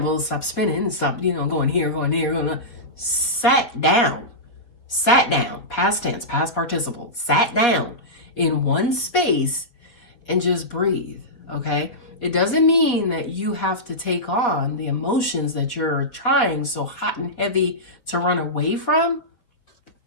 stop spinning, stop, you know, going here, going there, going on. Sat down, past tense, past participle, sat down in one space and just breathe, okay? It doesn't mean that you have to take on the emotions that you're trying so hot and heavy to run away from.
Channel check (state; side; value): late; right; 4.4 ms